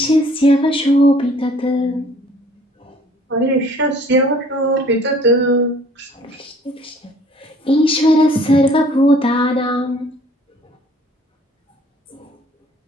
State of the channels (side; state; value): both; normal; correlation 0.55